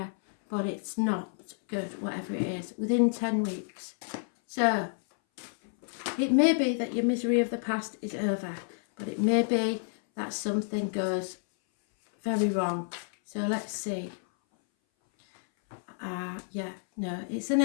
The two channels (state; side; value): silent; right; 58 dB below the other